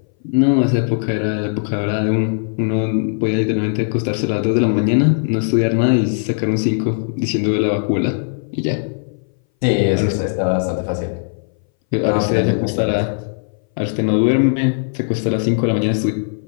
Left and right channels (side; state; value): right; silent; 61 dB below the other